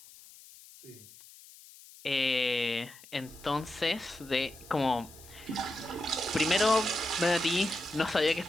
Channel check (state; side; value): noise; left; hiss, 21 dB below the sound